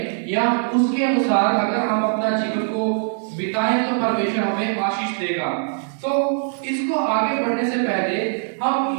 या उसके अनुसार अगर हम अपना जीवन को बिताएं तो परमेश्वर हमें आशीष देगा। तो इसको आगे बढ़ने से पहले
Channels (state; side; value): silent; left; 62 dB below the other